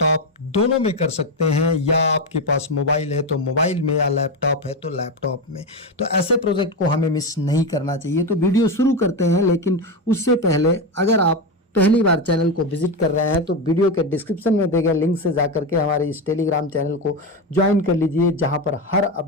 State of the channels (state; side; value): normal; both; correlation 0.14